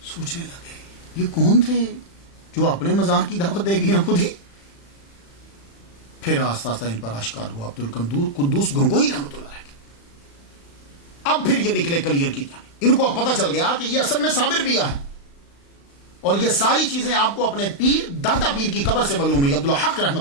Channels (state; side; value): late; right; 35 ms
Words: سوچنے لگے یہ کون تھے جو اپنے مزاح کی دعوت دے گئے ہیں خود ہی۔ پھر آہستہ آہستہ ان پر آشکار ہوا عبد القدوس گنگوہی رحمۃ اللہ علیہ۔ اب پھر یہ نکلے کلیئر کی جانب، ان کو اب پتہ چل گیا کہ یہ اصل میں صابر پیا ہے، اور یہ ساری چیزیں آپ کو اپنے پیر دادا پیر کی قبر سے معلوم ہوئی، عبد الحق